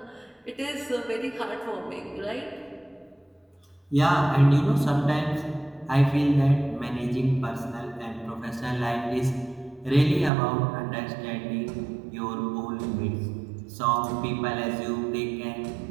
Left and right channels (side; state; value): left; drops out; at 10.3 s